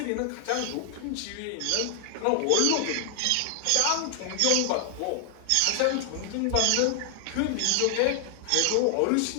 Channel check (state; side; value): different; both; correlation 0.00